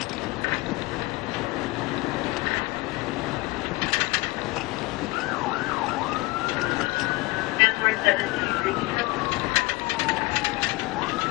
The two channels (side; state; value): right; quieter; 23.4 dB